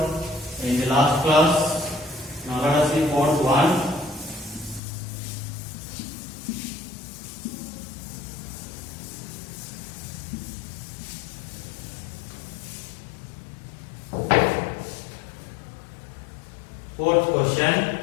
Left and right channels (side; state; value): right; drops out; at 4.8 s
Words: in the last class. Now let us see fourth one. Fourth question.